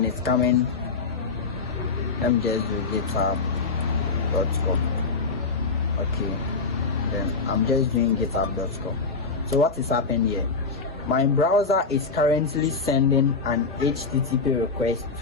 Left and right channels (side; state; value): right; quieter; 4.4 dB